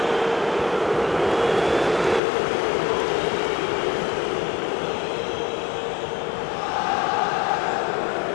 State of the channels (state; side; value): drops out; right; at 2.2 s